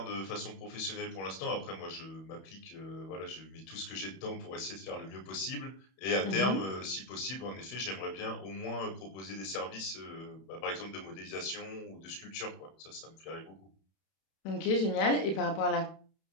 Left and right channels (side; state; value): right; late; 31 ms